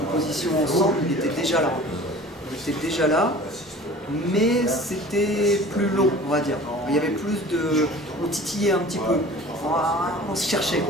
ensemble, il était déjà là. Il était déjà là, mais c'était plus long, on va dire. Il y avait plus de... On titillait un petit peu, on se cherchait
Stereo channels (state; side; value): normal; both; correlation 0.43